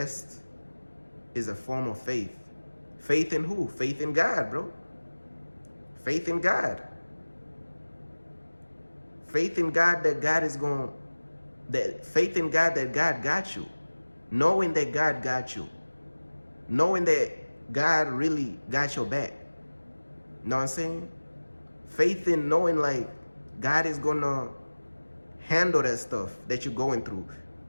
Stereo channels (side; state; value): both; inverted; correlation -1.00